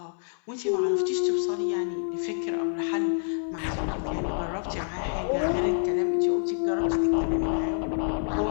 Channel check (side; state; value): right; silent; 60 dB below the other